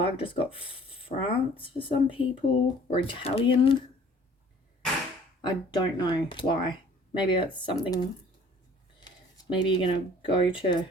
I've just got France for some people, or Italian. I don't know why. Maybe that's something. Maybe you're going to go to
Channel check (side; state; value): both; normal; correlation 0.53